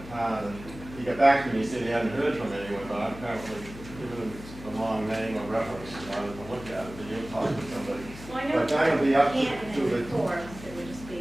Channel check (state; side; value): noise; left; hum, 14 dB below the sound